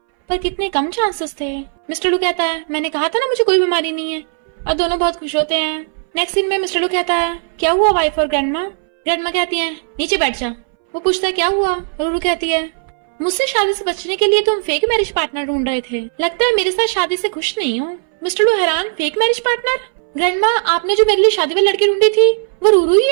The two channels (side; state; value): left; silent; 65 dB below the other